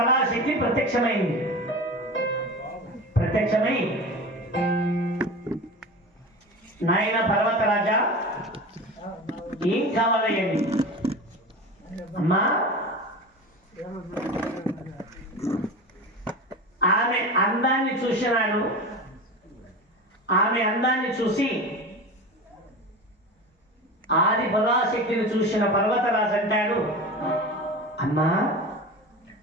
ప్రత్యక్షమైంది. ప్రత్యక్షమై నాయన పర్వతరాజా ఏం కావాలయ్యండి? అమ్మా ఆమె అందాన్ని చూసినాడు. ఆమె అందాన్ని చూసి ఆది పరాశక్తిని చూసిన పర్వతరాజు అంటాడు, అమ్మా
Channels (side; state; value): both; normal; correlation 0.30